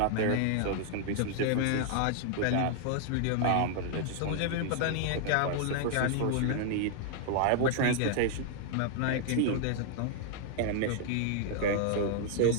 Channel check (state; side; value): different; both; correlation 0.00